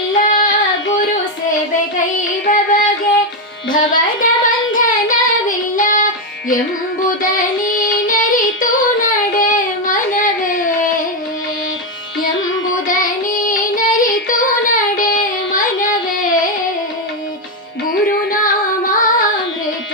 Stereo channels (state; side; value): normal; both; correlation 0.05